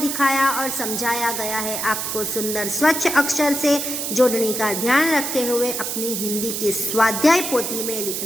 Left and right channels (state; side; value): noise; right; hiss, 3 dB below the sound